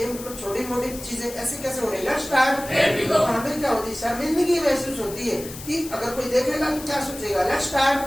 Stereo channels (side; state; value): left; noise; hiss, 13 dB below the sound